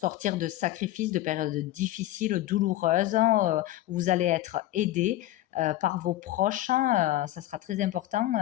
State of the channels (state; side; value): quieter; right; 14.9 dB